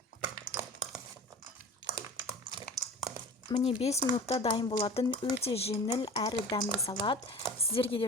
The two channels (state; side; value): normal; both; correlation 0.38